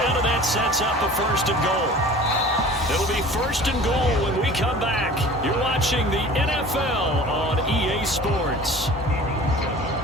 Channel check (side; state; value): both; normal; correlation 0.43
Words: and that sets up a 1st and goal. It'll be 1st and goal when we come back. You're watching the NFL on EA Sports.